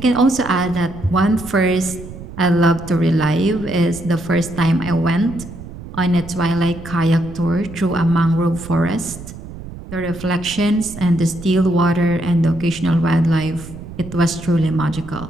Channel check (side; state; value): right; noise; rumble, 13 dB below the sound